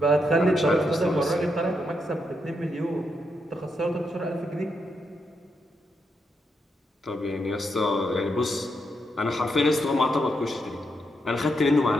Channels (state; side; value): normal; both; correlation 0.81